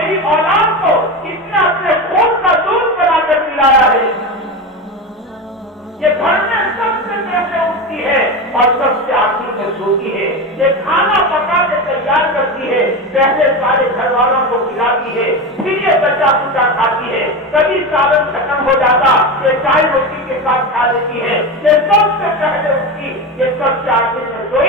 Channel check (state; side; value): normal; both; correlation 0.21